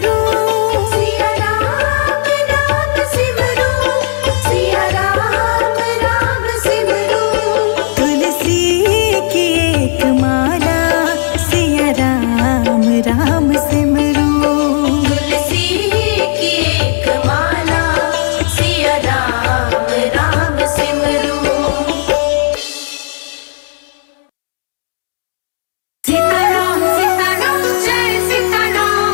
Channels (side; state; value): right; silent; digital silence